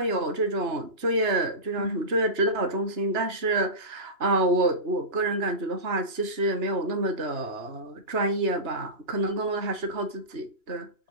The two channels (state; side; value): late; left; 2.9 ms